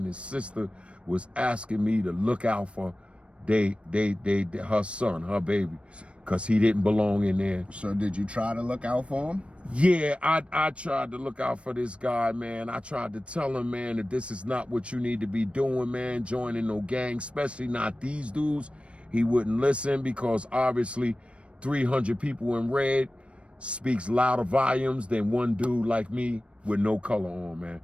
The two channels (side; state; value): left; late; 0.060 ms